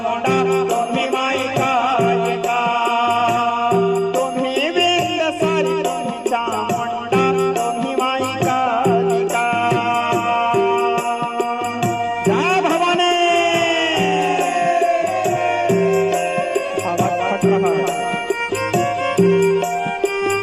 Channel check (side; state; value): both; identical; correlation 1.00